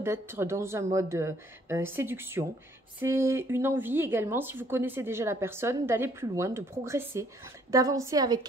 dans un mode séduction. C'est une envie également, si vous connaissez déjà la personne, d'aller plus loin, de progresser, d'avancer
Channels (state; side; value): normal; both; correlation 0.63